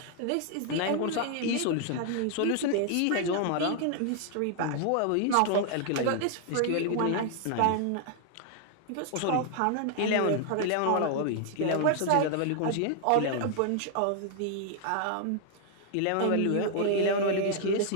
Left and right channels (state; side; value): different; both; correlation 0.00